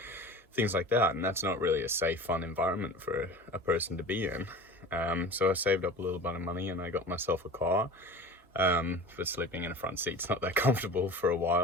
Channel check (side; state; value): both; normal; correlation 0.36